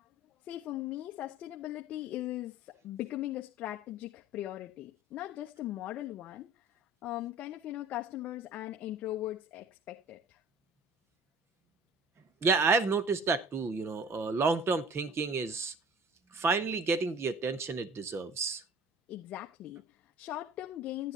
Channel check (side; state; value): both; normal; correlation 0.45